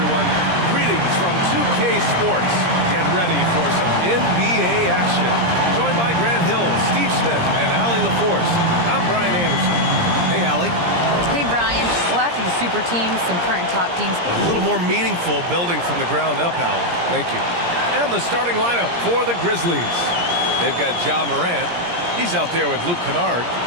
Greetings from 2K Sports. Get ready for some NBA action. Joined by Grant Hill, Steve Smith, and Allie LaForce. I'm Brian Anderson. Hey, Allie. Hey, Brian. Well, after the super teams, some current top teams. A little more meaningful building from the ground up, Allie. Thank you. And the starting lineup for the Grizzlies. They've got Ja Morant. He's out there with Luke Kennard.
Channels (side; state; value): left; late; 17 ms